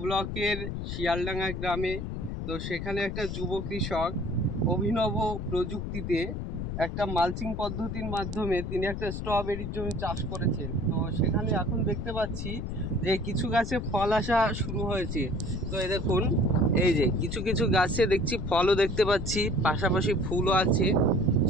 ব্লকের শিয়ালডাঙ্গা গ্রামে। তো সেখানে একটা যুব কৃষক অভিনব প্রযুক্তিতে একটা মালচিং পদ্ধতির মাধ্যমে তিনি একটা স্ট্রবেরির জমি চাষ করেছেন। তো সেখানে এখন দেখতে পাচ্ছি যে কিছু গাছে ফল আসা শুরু হয়েছে। তো এই দেখুন, এই যে কিছু কিছু গাছে দেখছি ফলও দেখতে পাচ্ছি, পাশাপাশি ফুলও আছে।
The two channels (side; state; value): left; noise; rumble, 4 dB below the sound